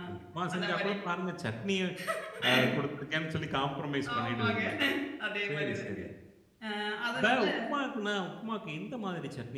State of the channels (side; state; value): both; identical; correlation 1.00